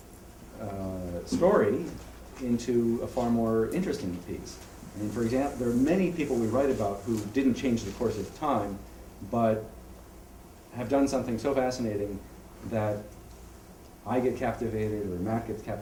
of story into a far more interesting piece. I mean, for example, there are many people we write about who didn't change the course of time, but have done something so fascinating that I get captivated, or Matt gets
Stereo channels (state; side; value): identical; both; correlation 1.00